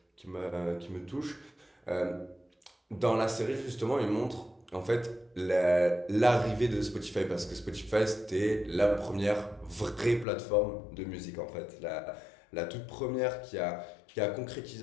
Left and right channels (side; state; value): right; drops out; at 10.2 s